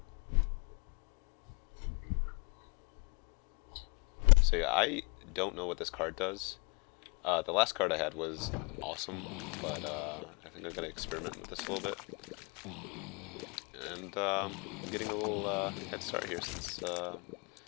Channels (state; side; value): quieter; right; 33.1 dB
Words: So yeah, I don't know what this card does. The last card I had was awesome, but I think I'm gonna experiment with this a little bit. And I'm getting a little head start here since the